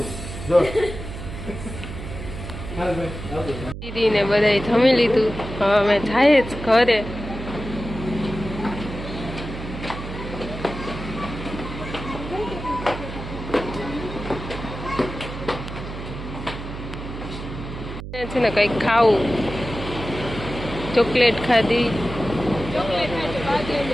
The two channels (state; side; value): noise; right; hum, 9 dB below the sound